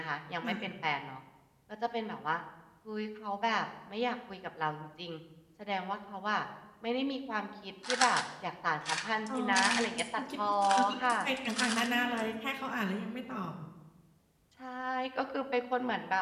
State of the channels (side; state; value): both; identical; correlation 1.00